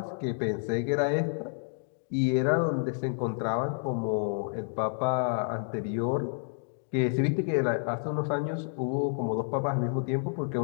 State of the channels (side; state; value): right; silent; digital silence